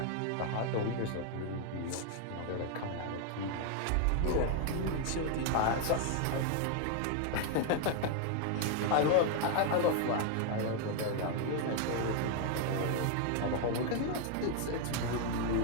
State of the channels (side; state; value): both; different; correlation 0.00